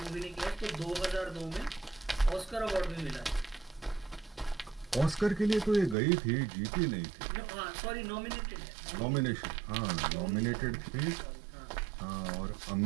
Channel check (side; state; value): left; drops out; at 6.0 s